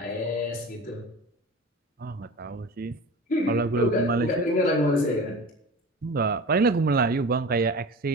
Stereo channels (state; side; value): normal; both; correlation 0.34